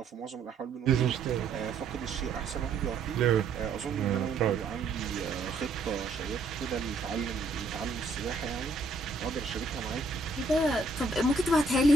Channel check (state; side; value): quieter; left; 3.5 dB